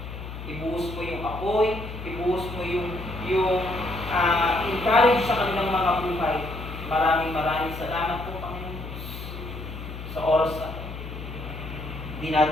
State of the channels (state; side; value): noise; left; hum, 9 dB below the sound